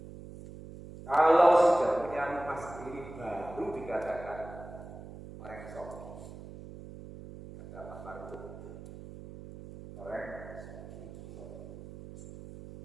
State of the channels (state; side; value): noise; right; hum, 14 dB below the sound